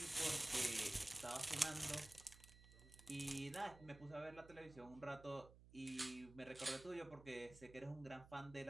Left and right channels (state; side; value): noise; right; hum, 19 dB below the sound